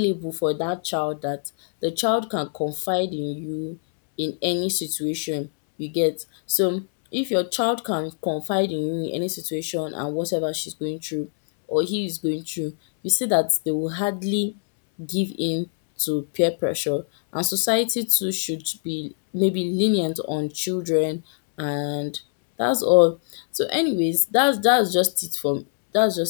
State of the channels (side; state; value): right; silent; 63 dB below the other